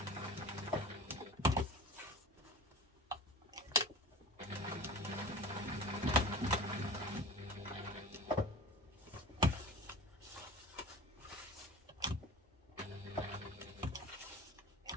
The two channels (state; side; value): normal; both; correlation 0.37